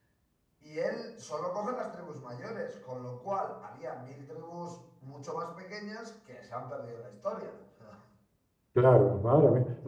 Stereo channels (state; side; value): identical; both; correlation 1.00